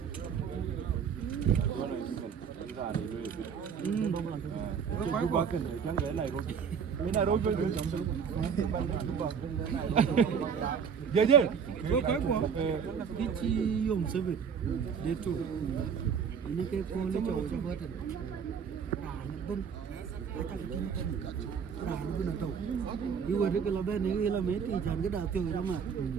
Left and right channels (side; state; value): left; quieter; 6.9 dB